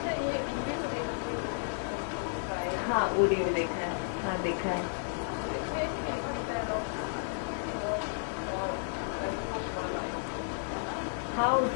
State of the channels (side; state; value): right; silent; 56 dB below the other